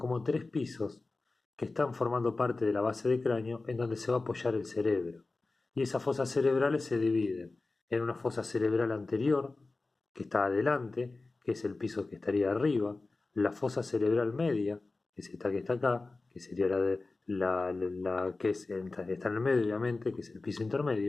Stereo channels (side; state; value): right; quieter; 3.5 dB